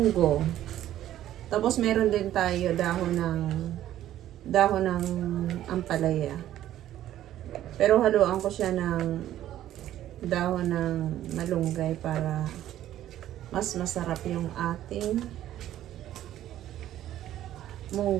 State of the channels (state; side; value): quieter; left; 12.6 dB